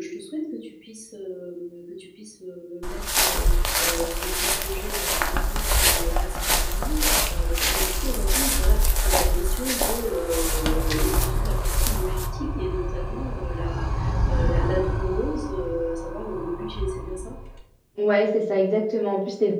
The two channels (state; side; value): identical; both; correlation 1.00